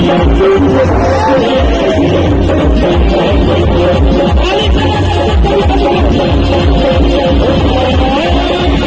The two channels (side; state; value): both; identical; correlation 1.00